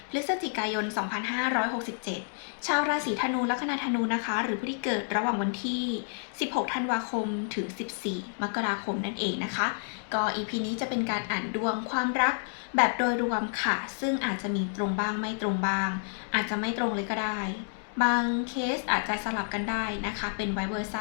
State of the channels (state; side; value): silent; right; digital silence